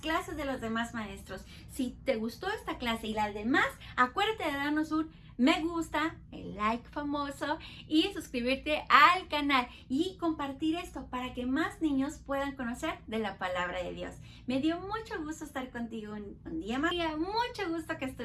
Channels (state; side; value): identical; both; correlation 1.00